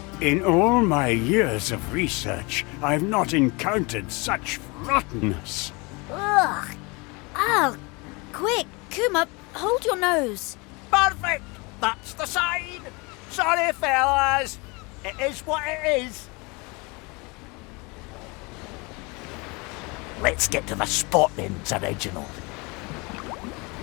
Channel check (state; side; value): quieter; right; 27.6 dB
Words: In all my years of research, I've not encountered such rottenness. Ugh. Oh, quick, Kuma, hold your nose. Perfect. That's the sign. Sorry, fellas. It is what it is. Let's get to the spot then, Sir Reginald.